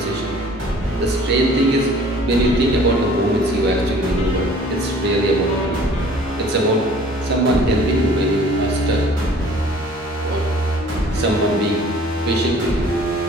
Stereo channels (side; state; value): both; normal; correlation 0.51